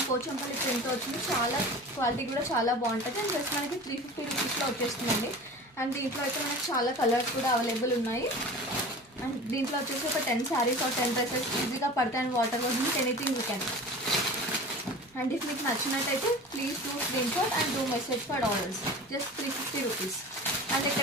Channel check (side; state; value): both; normal; correlation 0.37